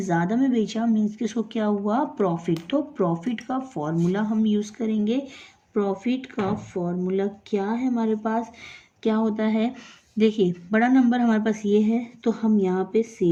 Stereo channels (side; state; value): both; identical; correlation 1.00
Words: ज़्यादा में बेचा, मीन्स कि उसको क्या हुआ? प्रॉफिट। तो प्रॉफिट का फॉर्मूला हम यूज़ करेंगे। प्रॉफिट का फॉर्मूला क्या है हमारे पास? क्या होता है? देखिए, बड़ा नंबर हमारे पास ये है, तो हम यहाँ पे